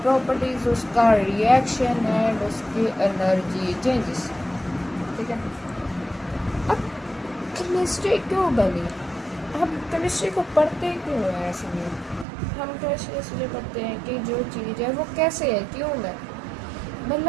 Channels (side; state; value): left; drops out; at 12.2 s